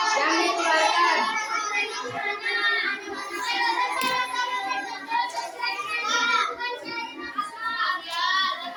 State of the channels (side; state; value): both; identical; correlation 1.00